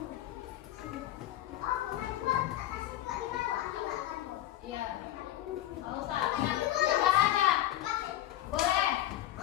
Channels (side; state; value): right; quieter; 14.0 dB